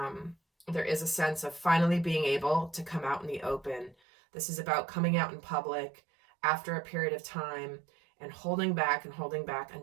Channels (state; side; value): drops out; left; at 4.0 s